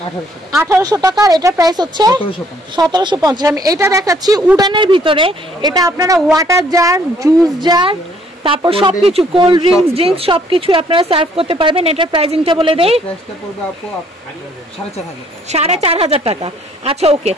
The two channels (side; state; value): both; normal; correlation 0.64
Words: 1800 টাকা আর এটার প্রাইস হচ্ছে 1750। আমি এটা দেখাচ্ছি উডানের ভিতরে। এটা আপনারা ওয়াটার জার, জুস জার, তারপর সবকিছু কোল্ড ড্রিঙ্কস সবকিছু আপনারা সার্ভ করতে পারবেন। এটার প্রাইসিংটা বলে দেই, 4500 টাকা। আচ্ছা ওকে,